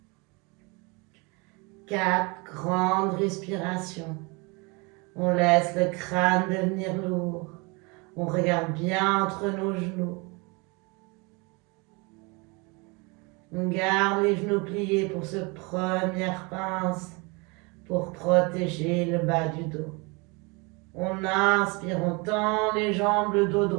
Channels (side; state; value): left; quieter; 28.7 dB